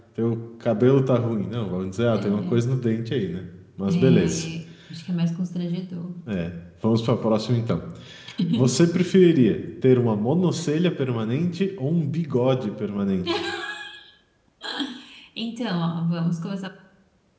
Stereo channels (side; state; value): both; identical; correlation 1.00